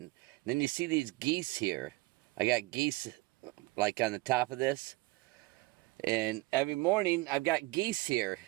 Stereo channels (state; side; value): quieter; left; 21.7 dB